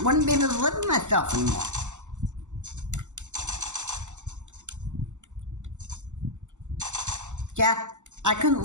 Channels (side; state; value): left; late; 0.84 ms